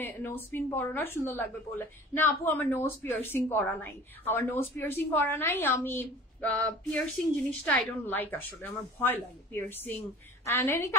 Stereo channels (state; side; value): normal; both; correlation 0.41